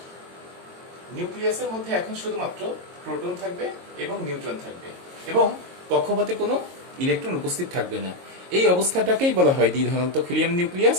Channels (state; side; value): late; left; 22 ms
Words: নিউক্লিয়াসের মধ্যে এখন শুধুমাত্র প্রোটন থাকবে এবং নিউট্রন থাকবে এবং কক্ষপথে কোনো ইলেকট্রন উপস্থিত থাকবে না। এই অবস্থাটাকেই বলা হয় দ্বিধনাত্মক হিলিয়াম নিউক্লিয়াস,